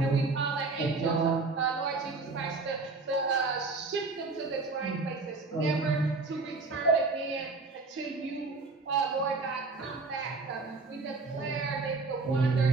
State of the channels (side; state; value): left; quieter; 3.9 dB